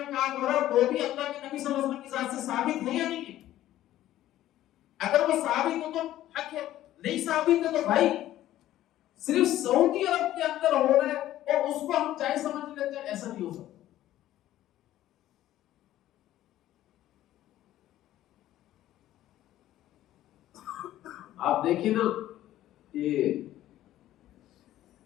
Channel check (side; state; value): right; quieter; 13.7 dB